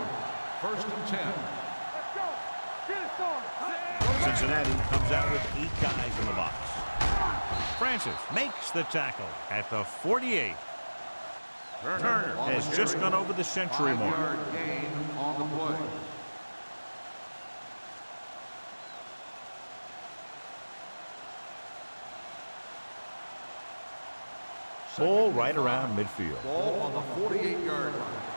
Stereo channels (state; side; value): inverted; both; correlation -1.00